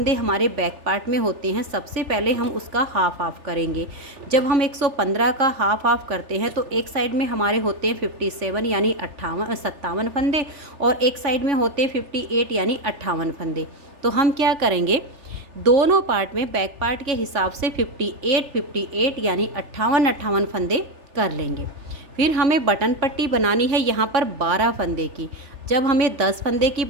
हमारे बैक पार्ट में होते हैं, सबसे पहले हम उसका हाफ हाफ करेंगे। जब हम 115 का हाफ हाफ करते हैं तो एक साइड में हमारे होते हैं 57 यानी 57 फंदे, और एक साइड में होते हैं 58 यानी 58 फंदे। तो हम क्या करेंगे, दोनों पार्ट में बैक पार्ट के हिसाब से 58 यानी 58 फंदे कर लेंगे। फिर हमें बटन पट्टी बनानी है यहाँ पर 12 फंदे की। जब हमें 10 फंदे की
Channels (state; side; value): late; left; 3.4 ms